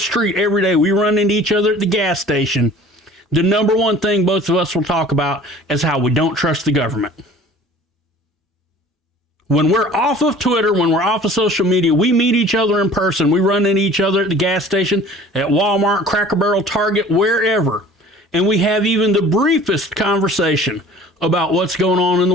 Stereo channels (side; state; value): both; normal; correlation 0.47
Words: every day, we run into each other at the gas station, the number one thing both of us will talk about is how we don't trust the government. When we're off of Twitter, when we're off of social media, we meet each other in person. We run into each other at the gas station, at Walmart, Cracker Barrel, Target, wherever. And we have even the briefest conversation about what's going on in the